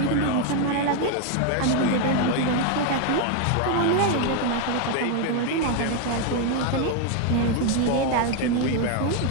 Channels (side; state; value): both; different; correlation 0.01